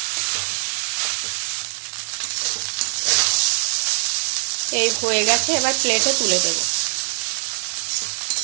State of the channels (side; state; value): left; silent; 64 dB below the other